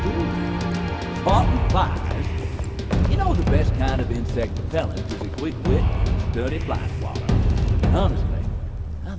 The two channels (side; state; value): both; identical; correlation 1.00